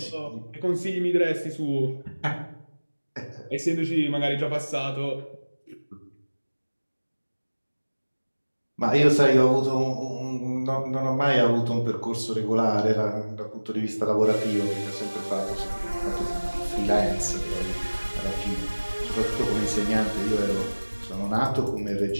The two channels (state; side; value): inverted; both; correlation -1.00